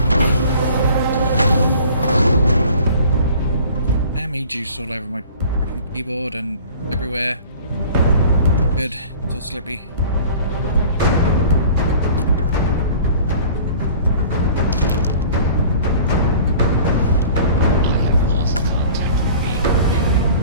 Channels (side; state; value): both; inverted; correlation -0.46